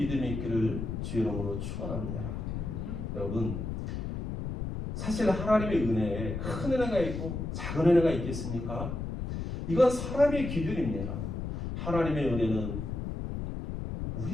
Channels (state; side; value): noise; left; rumble, 4 dB below the sound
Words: 있기를 주의 이름으로 축원합니다. 여러분, 사실 하나님의 은혜에 큰 은혜가 있고 작은 은혜가 있겠습니까? 이건 사람의 기준입니다. 하나님의 은혜는